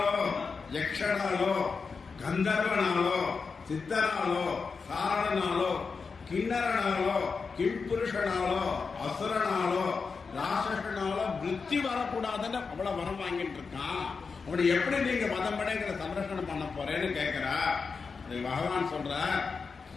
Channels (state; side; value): quieter; right; 5.0 dB